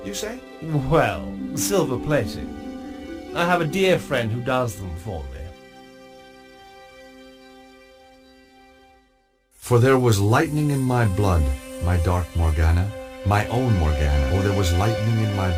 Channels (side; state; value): both; identical; correlation 1.00